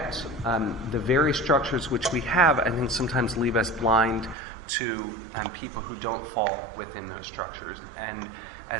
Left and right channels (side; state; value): left; drops out; at 4.4 s